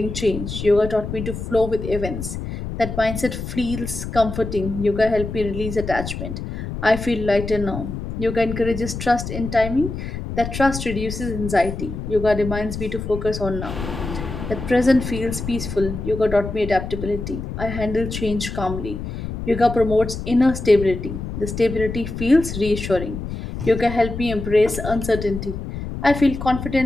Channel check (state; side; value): noise; left; rumble, 7 dB below the sound